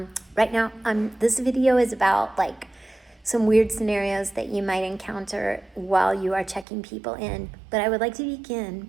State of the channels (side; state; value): left; drops out; at 6.7 s